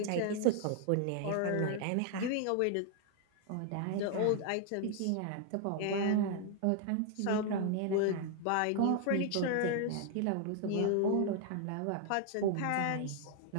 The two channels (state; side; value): different; both; correlation 0.00